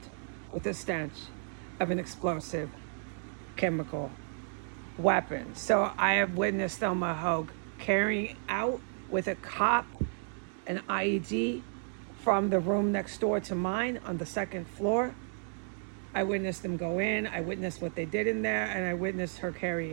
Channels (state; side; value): silent; left; 56 dB below the other